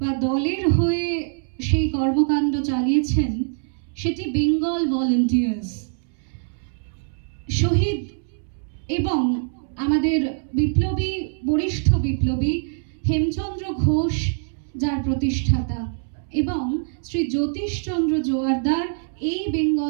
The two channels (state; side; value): silent; left; 63 dB below the other